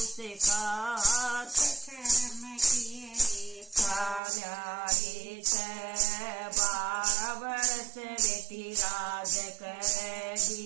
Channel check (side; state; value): left; drops out; at 4.2 s